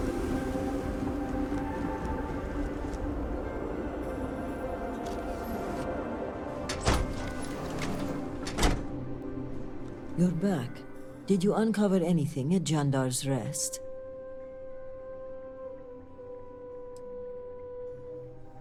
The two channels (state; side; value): identical; both; correlation 1.00